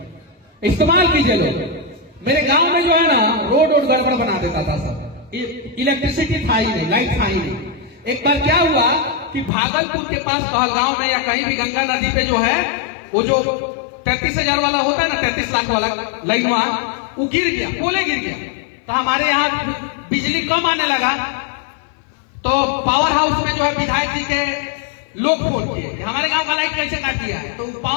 इस्तेमाल कीजिए लोग। मेरे गांव में जो है ना, रोड गड़बड़ बना देता था सब, इलेक्ट्रिसिटी था ही नहीं, लाइट था ही नहीं। एक बार क्या हुआ कि भागलपुर के पास पहलगांव में या कहीं भी गंगा नदी पे जो है, वो जो 33,000 वाला होता है ना, 33 लाख वाला लाइन, वो गिर गया, पोले गिर गया। तो हमारे यहाँ बिजली कम आने लगा, तो पावर हाउस में जो है विधायक जी के लोग फोन किए कि हमारे गांव का लाइट कैसे काट दिया। तो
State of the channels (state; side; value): drops out; right; at 9.5 s